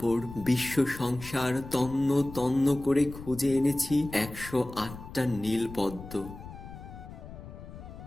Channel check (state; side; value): noise; left; rumble, 14 dB below the sound